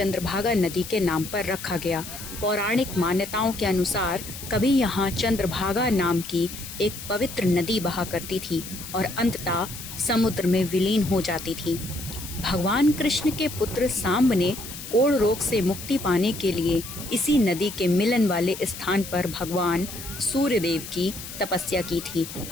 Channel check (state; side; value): noise; left; hiss, 11 dB below the sound